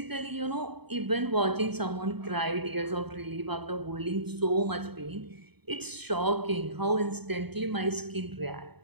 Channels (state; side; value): late; left; 0.98 ms